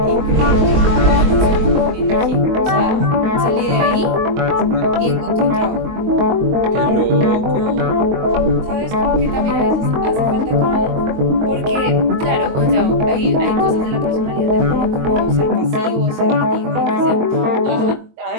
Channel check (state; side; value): late; left; 22 ms